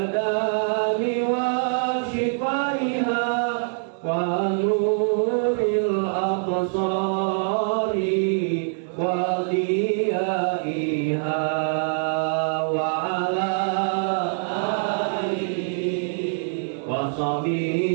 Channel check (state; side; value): silent; left; digital silence